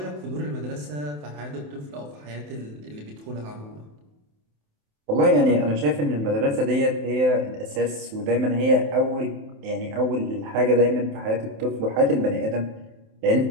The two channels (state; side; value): late; left; 27 ms